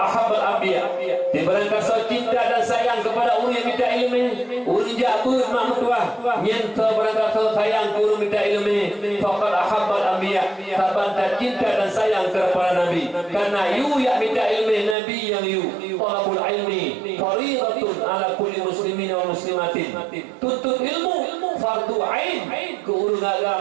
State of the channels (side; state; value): left; drops out; at 15.0 s